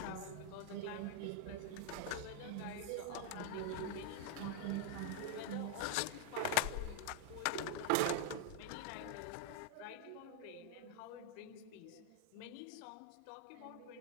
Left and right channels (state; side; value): different; both; correlation 0.00